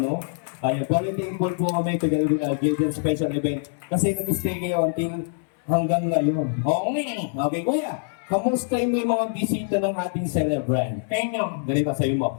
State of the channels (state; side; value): silent; right; digital silence